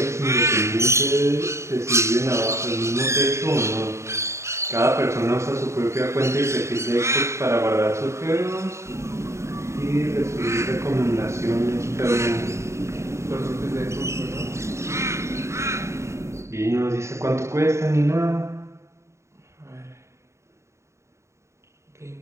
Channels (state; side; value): late; left; 0.14 ms